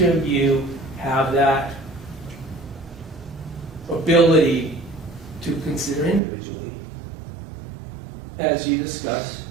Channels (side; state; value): left; drops out; at 6.2 s